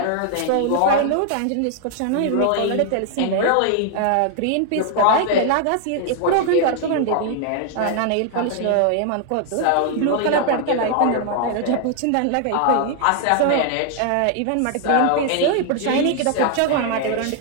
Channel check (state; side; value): different; both; correlation 0.00